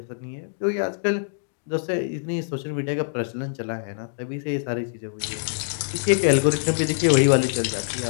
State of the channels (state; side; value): silent; right; digital silence